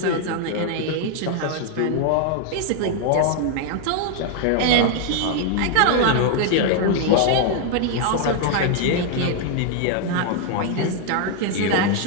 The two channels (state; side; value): different; both; correlation 0.00